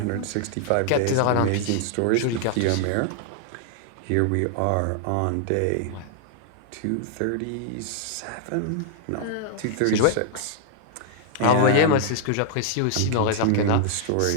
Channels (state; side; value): different; both; correlation -0.01